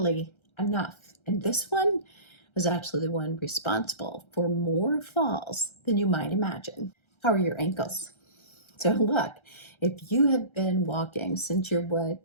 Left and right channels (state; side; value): late; right; 1.3 ms